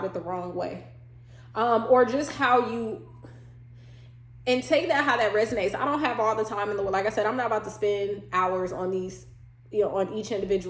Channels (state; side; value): identical; both; correlation 1.00